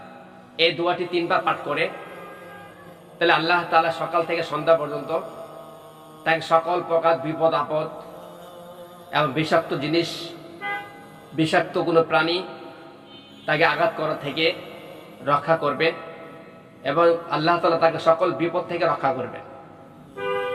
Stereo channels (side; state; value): both; identical; correlation 1.00